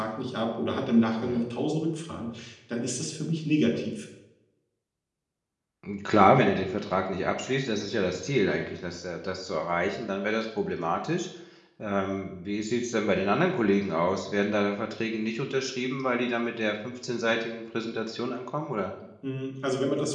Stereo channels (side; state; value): both; identical; correlation 1.00